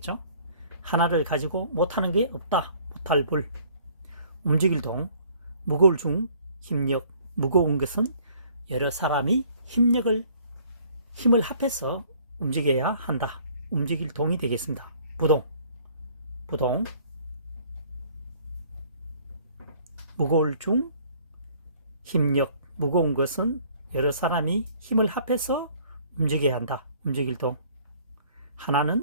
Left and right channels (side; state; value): both; inverted; correlation -0.56